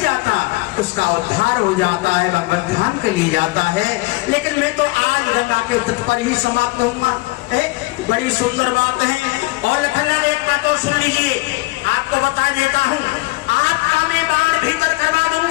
उसका उद्धार हो जाता है, भगवत धाम के लिए जाता है। लेकिन मैं तो आज गंगा के तट पर ही समाप्त होऊंगा। बड़ी सुंदर बात है। और लखनलाल एक बात और सुन लीजिए, आपको बता देता हूँ, आपका मैं बाण भीतर करवा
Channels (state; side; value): quieter; right; 22.2 dB